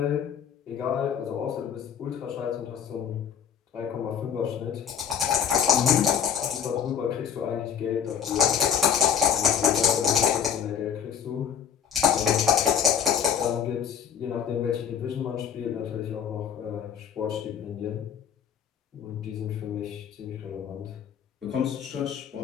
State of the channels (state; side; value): quieter; right; 8.3 dB